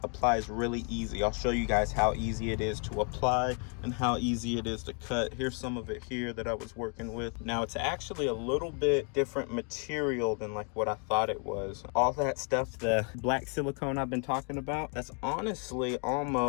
applies really easy. I'll show you guys how easy it is to apply and how easy it is to cut. Here's some of it here that I was working with. Now it's actually a little bit different material than like what I thought it was. All that stuff, the black silicone I've been talking about, that's honestly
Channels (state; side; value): quieter; right; 38.5 dB